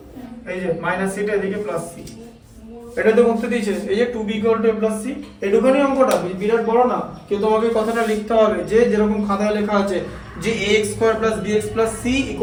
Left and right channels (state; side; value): identical; both; correlation 1.00